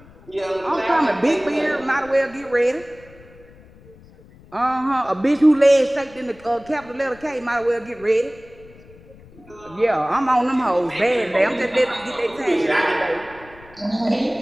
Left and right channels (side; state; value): left; noise; rumble, 23 dB below the sound